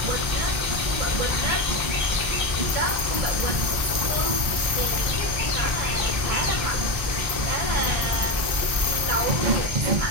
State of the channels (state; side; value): late; left; 1.3 ms